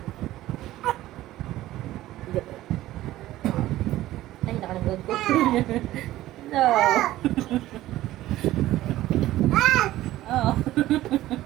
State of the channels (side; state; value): left; quieter; 15.3 dB